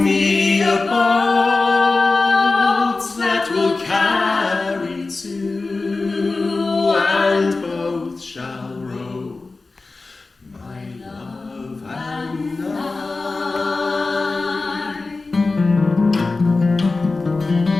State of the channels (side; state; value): right; quieter; 3.6 dB